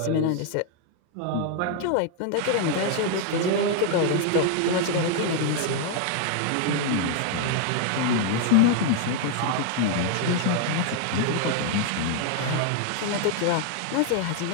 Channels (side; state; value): both; different; correlation 0.00